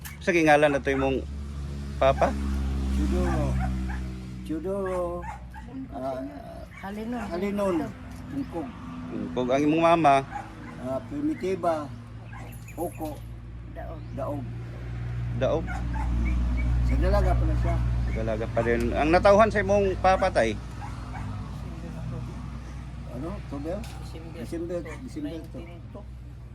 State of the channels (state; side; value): identical; both; correlation 1.00